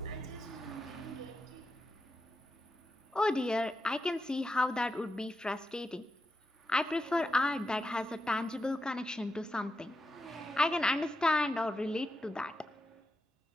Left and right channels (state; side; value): normal; both; correlation 0.87